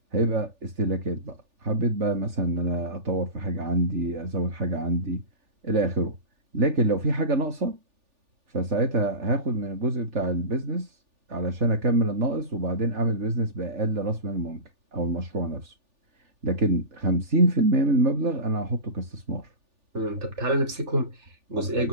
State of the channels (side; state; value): left; late; 3.4 ms